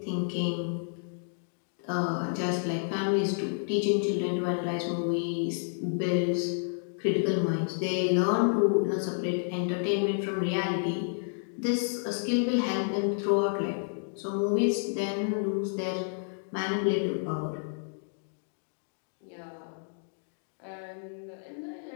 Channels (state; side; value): silent; right; digital silence